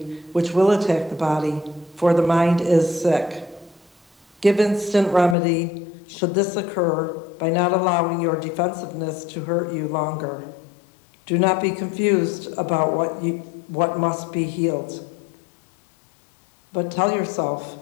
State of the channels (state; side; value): drops out; right; at 5.4 s